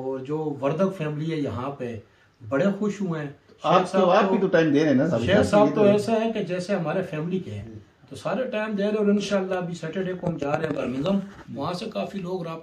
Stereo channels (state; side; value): identical; both; correlation 1.00